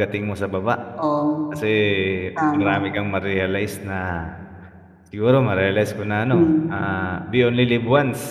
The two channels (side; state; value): both; identical; correlation 1.00